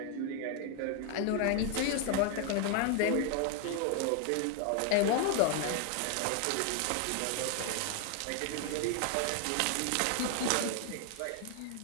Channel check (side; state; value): both; different; correlation 0.00